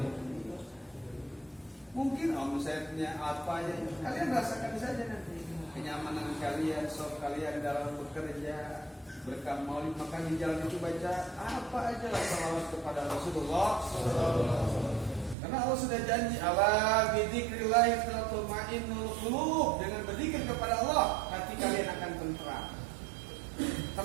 Mungkin omsetnya apa aja, kalian rasakan saja nanti kenyamanan kalian, sok kalian dalam bekerja, berkah maulid, makan di jalan itu baca apa aja lah salawat kepada Rasulullah. Karena Allah sudah janji, ala bidzikrillah tatma'innul qulub, dengan berzikir kepada Allah hati kalian akan tentram,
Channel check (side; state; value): left; drops out; at 15.4 s